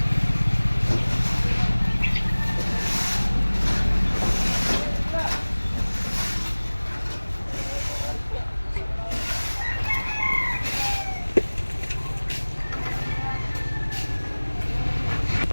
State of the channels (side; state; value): both; inverted; correlation -1.00